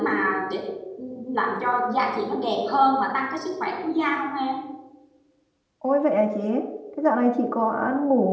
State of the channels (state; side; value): identical; both; correlation 1.00